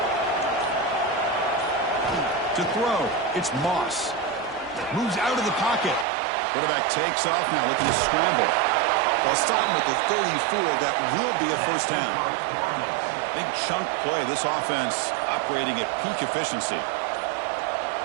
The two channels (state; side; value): drops out; left; at 6.1 s